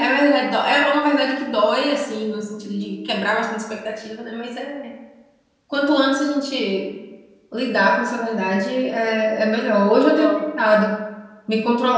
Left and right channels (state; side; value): identical; both; correlation 1.00